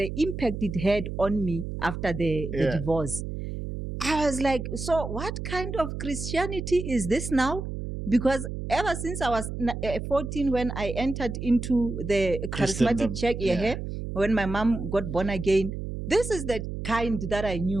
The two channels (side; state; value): right; noise; hum, 6 dB below the sound